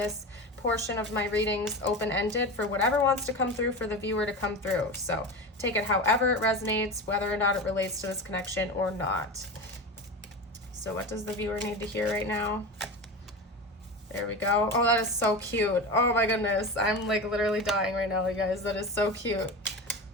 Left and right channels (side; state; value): both; normal; correlation 0.26